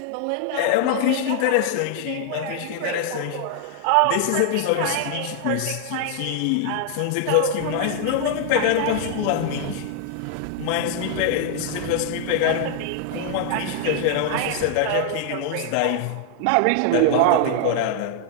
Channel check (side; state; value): both; different; correlation 0.00